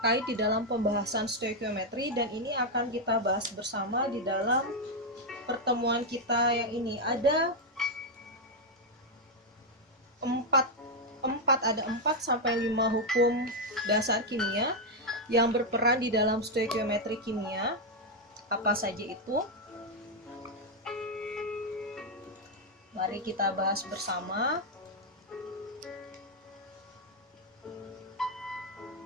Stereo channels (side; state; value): both; normal; correlation 0.02